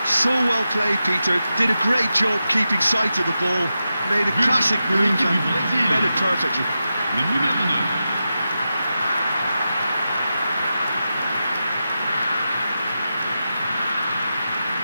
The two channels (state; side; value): inverted; both; correlation -0.90